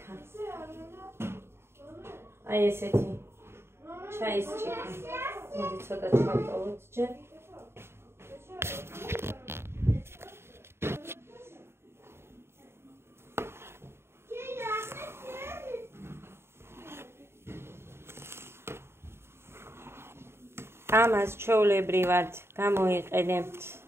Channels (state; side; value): late; left; 0.12 ms